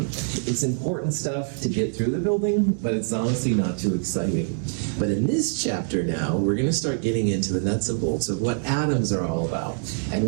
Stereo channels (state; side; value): silent; left; digital silence